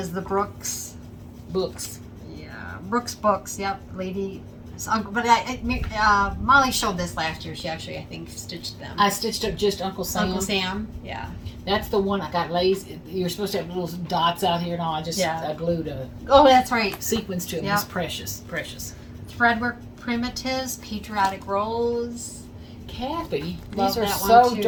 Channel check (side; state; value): both; identical; correlation 1.00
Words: the Brooks. Books. Yeah, Brooks Books. Yep, lady. But Molly showed this last year. She actually, I think, stitched them. I stitched up just Uncle Sam. Uncle Sam. Yeah. That's the one I got lazy. You're supposed to have little dots out here and all. I glued a Oh, that's right. sequence to it. Yep. It's precious, precious. Threadwork Primitives, Patriotic Rose. Kathy, Love these are that one, so too.